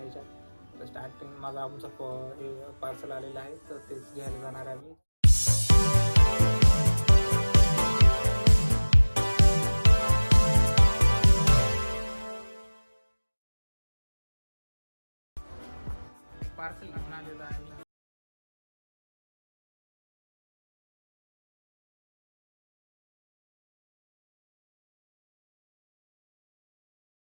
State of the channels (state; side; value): inverted; both; correlation -1.00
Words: तर स्टार्टिंग माझा आमचा हे पार्सल आलेलं आहे, तर तेच घ्यायला जाणार आहे आम्ही. पार्सल घेऊन आलेलं आहे.